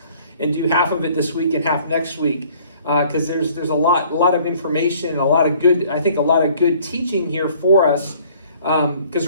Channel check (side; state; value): both; inverted; correlation -0.56